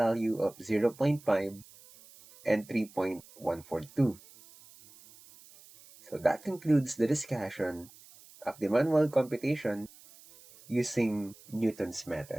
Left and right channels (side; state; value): right; noise; hiss, 23 dB below the sound